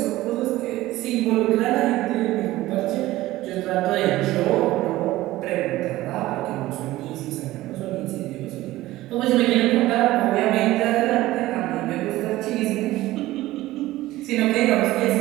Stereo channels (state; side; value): quieter; left; 16.8 dB